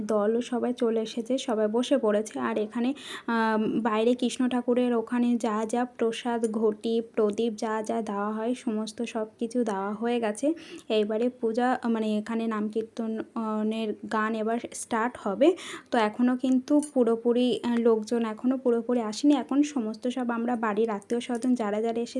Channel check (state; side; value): identical; both; correlation 1.00